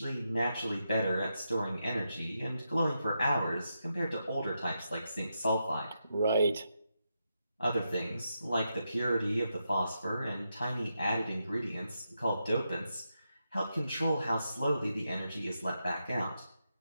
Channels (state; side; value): inverted; both; correlation -0.85